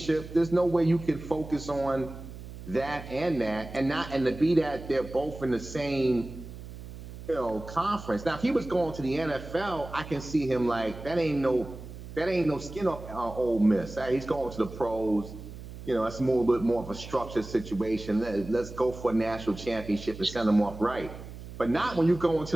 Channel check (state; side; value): noise; right; hum, 13 dB below the sound